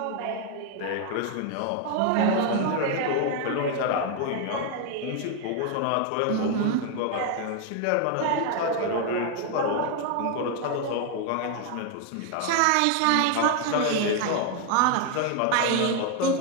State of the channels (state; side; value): different; both; correlation 0.00